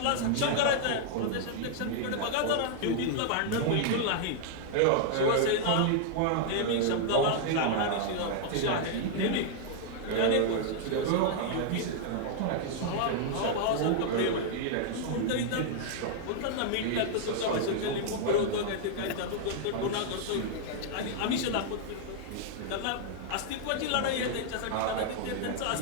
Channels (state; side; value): different; both; correlation -0.01